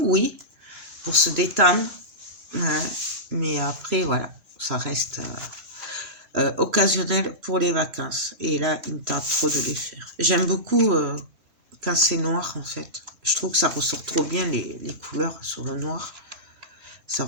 oui, pour se détendre. Ouais. Mais après, voilà, ça reste occasionnel pour les vacances. Et là, il me tarde trop de les faire. J'aime beaucoup quand c'est noir, en fait. Je trouve que ça ressort trop bien, les couleurs sur le noir. Ça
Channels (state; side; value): late; left; 3.0 ms